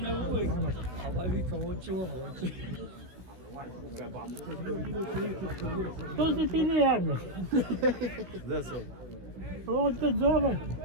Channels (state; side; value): late; left; 16 ms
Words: Ovaj vika, hoće ovo, hoće. Što se ti ne javljaš? Gdje se? On te zove.